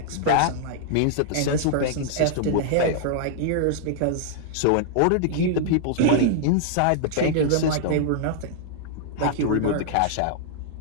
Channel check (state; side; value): different; both; correlation -0.01